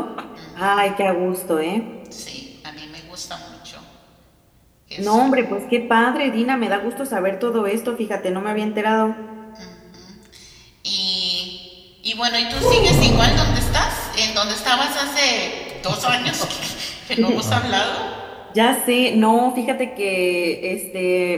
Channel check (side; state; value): both; identical; correlation 1.00